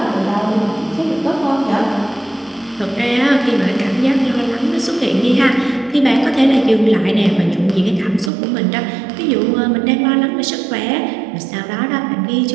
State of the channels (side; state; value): left; drops out; at 8.3 s